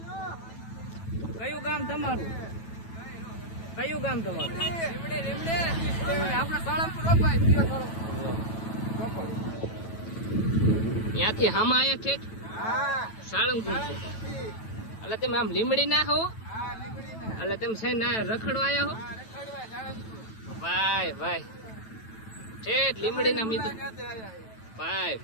કયું ગામ તમારું? કયું ગામ તમારું? આપણે સાળંગપુર ત્યાંથી હામાં આવ્યા છે સાળંગપુર છે. એટલે તમે આમ લીમડી ના હો? એટલે તમે છે ના રખડવા આવ્યા હો? ભાઈ ભાઈ ઠેઠ લીમડી ના મિત્રો. ભાઈ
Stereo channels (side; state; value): right; late; 9.1 ms